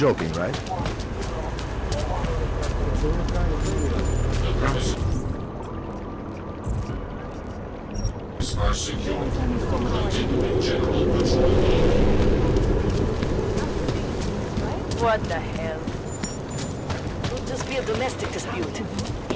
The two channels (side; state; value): both; identical; correlation 1.00